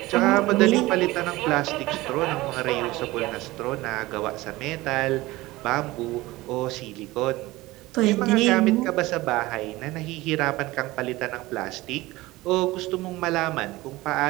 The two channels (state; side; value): quieter; left; 19.3 dB